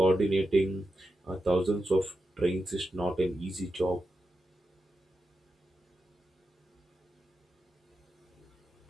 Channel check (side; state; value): both; normal; correlation 0.89